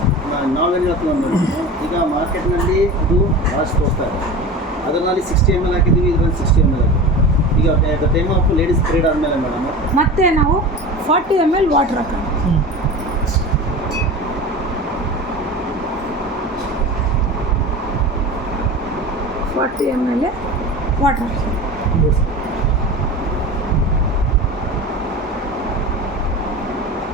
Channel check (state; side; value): normal; both; correlation 0.32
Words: ನಾವೇನು ಹೇಳ್ತೀವಿ ಮೇಡಮ್, ಈಗ ಮಾರ್ಕೆಟ್ನಲ್ಲಿ ಇದು ಭಾಳಷ್ಟು ತೋರಿಸ್ತಾ ಇದೆ. ಅದರಲ್ಲಿ 60 ml ಹಾಕಿದ್ದೀವಿ, ಇದರಲ್ಲಿ 60 ml ಹಾಕಿದ್ದೀವಿ. ಈಗ the time of ladies period ಆದಮೇಲೆ ಮೇಡಮ್ ಮತ್ತೆ ನಾವು 40 ml ವಾಟರ್ ಹಾಕೋಣ. 40 ml ವಾಟರ್ ಹಾಕಿ.